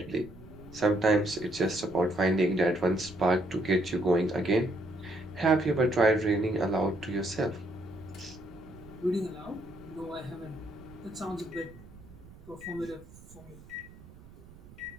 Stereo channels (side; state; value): right; noise; rumble, 20 dB below the sound